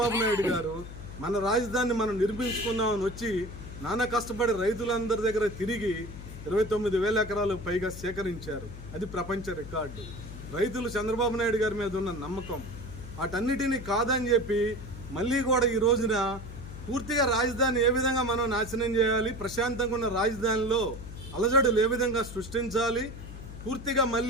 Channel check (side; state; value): left; noise; hum, 12 dB below the sound